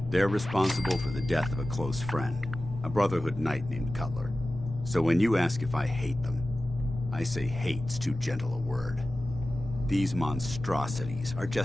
They're responsible for the death of a close friend, a Brotherhood knight named Cutler. So when you ask if I hate them, I say hate's too gentle a word. These monstrosities are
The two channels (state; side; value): normal; both; correlation 0.95